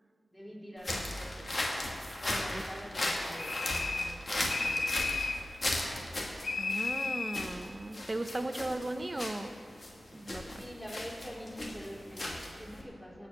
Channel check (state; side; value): normal; both; correlation 0.94